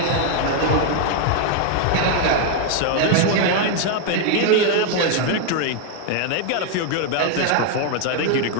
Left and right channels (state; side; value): different; both; correlation 0.01